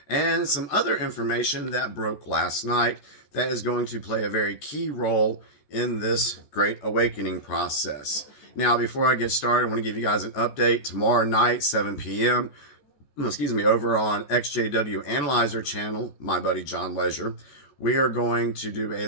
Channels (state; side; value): late; right; 14 ms